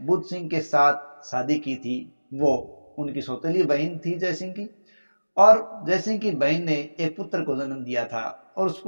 बुद्ध सिंह के साथ शादी की थी, वो उनकी सौतेली बहन थी जयसिंह की। और जयसिंह की बहन ने एक पुत्र को जन्म दिया था और उस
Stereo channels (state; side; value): inverted; both; correlation -1.00